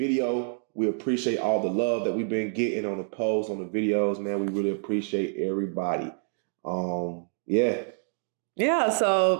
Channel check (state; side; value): silent; left; digital silence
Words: We appreciate all the love that we've been getting on the posts, on the videos, man. We really appreciate everybody. Yeah,